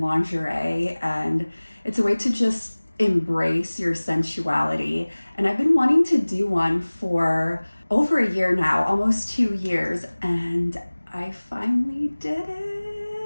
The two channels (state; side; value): inverted; both; correlation -1.00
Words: and it's a way to just embrace your sensuality. And I've been wanting to do one for over a year now, almost 2 years, and I finally did